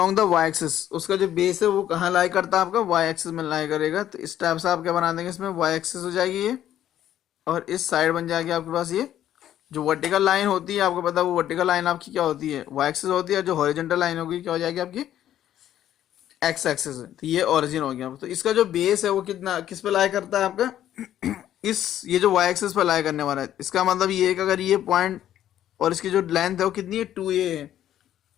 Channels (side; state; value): right; quieter; 11.6 dB